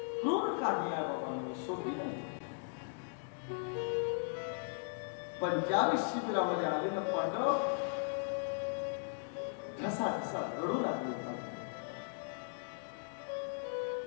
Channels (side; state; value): right; silent; digital silence